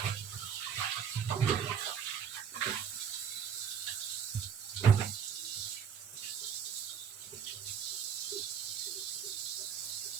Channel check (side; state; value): left; quieter; 7.5 dB